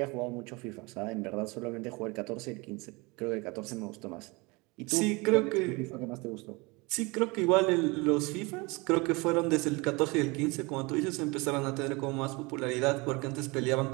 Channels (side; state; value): left; quieter; 26.1 dB